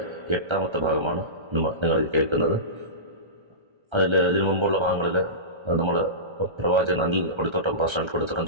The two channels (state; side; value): late; left; 1.3 ms